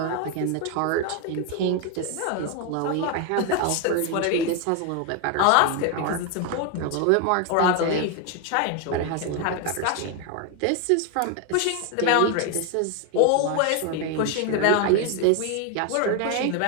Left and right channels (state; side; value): different; both; correlation 0.01